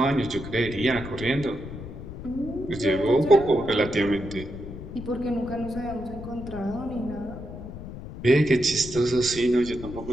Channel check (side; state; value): left; noise; rumble, 11 dB below the sound